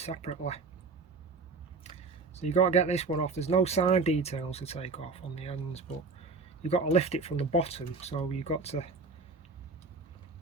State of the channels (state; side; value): quieter; left; 4.1 dB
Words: So you've got to get this one off. There's no side details to take off on the ends, but you've got to lift it from the bottom. So you've got to